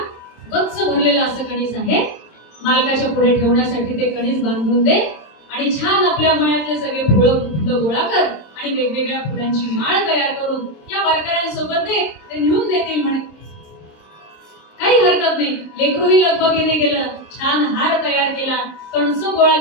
गच्च भरलेला असं कणीस आहे, मालकाच्या पुढे ठेवण्यासाठी ते कणीस बांधून दे, आणि छान आपल्या मळ्यातले सगळे फुलं गोळा कर आणि वेगवेगळ्या फुलांची माळ तयार करून या वारकऱ्यांसोबत दे, ते नेऊन देतील म्हणे. काही हरकत नाही. लेकरूही लगबगीने गेलं, छान हार तयार केला, कणसं गोळा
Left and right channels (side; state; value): right; late; 27 ms